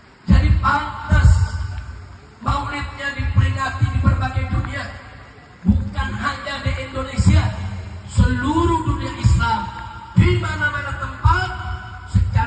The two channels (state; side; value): identical; both; correlation 1.00